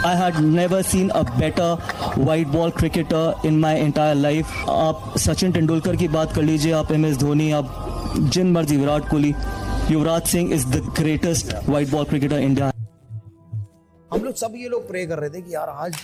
I had never seen a better white ball cricketer in my entire life. आप सचिन तेंदुलकर की बात कर लीजिए, आप MS Dhoni, आप जिन मर्जी, Virat Kohli, Yuvraj Singh is the greatest white ball cricketer India. हम लोग सब ये लोग प्रे कर रहे थे कि यार आज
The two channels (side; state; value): both; identical; correlation 1.00